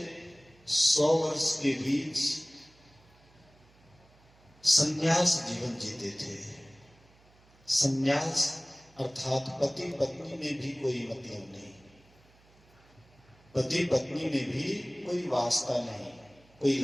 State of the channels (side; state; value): right; noise; hum, 29 dB below the sound